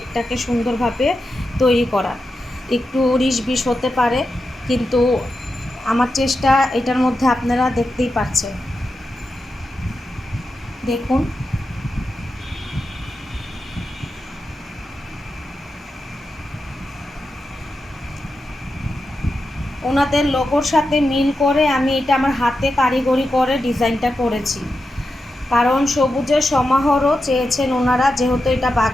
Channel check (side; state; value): both; normal; correlation 0.89